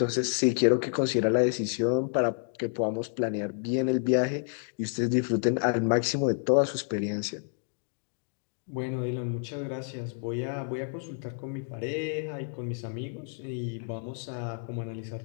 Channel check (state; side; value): silent; right; 58 dB below the other